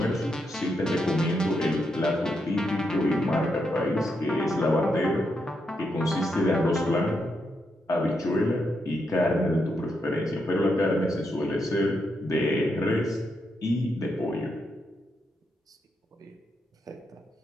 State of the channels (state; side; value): normal; both; correlation 0.82